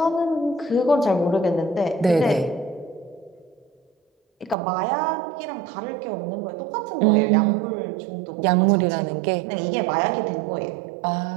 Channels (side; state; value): left; drops out; at 4.5 s